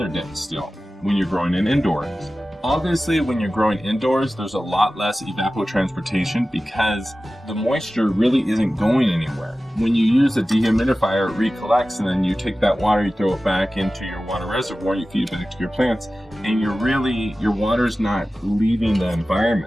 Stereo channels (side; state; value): both; normal; correlation 0.96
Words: day still when you're growing in indoors. Obviously, when you're growing indoors, there's a lot less evapotranspiration because the moisture really isn't going anywhere. When you use a dehumidifier, it recollects, and then you take that water, you throw it back into your water reservoir, you feed it back to your plants, and your water's not leaving the